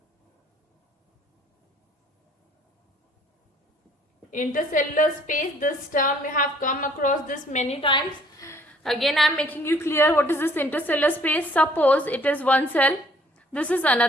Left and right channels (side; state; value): both; normal; correlation 0.60